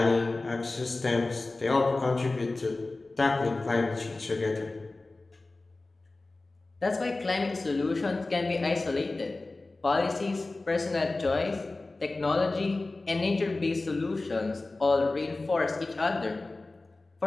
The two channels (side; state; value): right; quieter; 3.2 dB